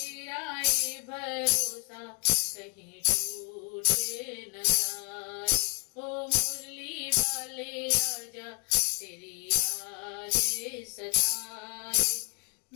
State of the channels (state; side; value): quieter; right; 37.4 dB